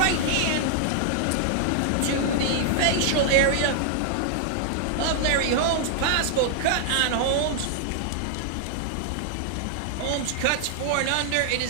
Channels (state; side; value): different; both; correlation -0.01